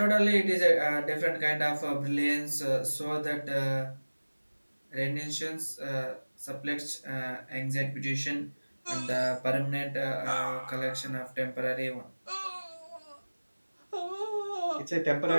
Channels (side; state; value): both; inverted; correlation -1.00